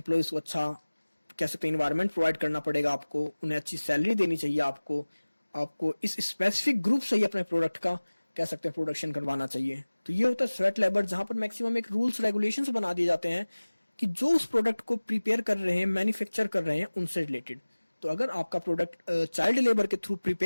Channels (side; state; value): both; inverted; correlation -1.00